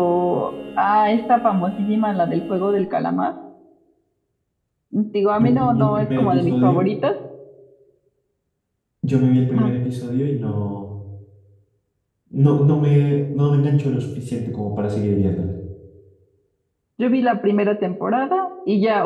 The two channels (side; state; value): both; identical; correlation 1.00